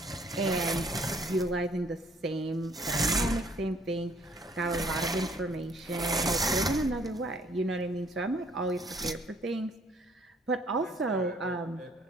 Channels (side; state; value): both; normal; correlation 0.61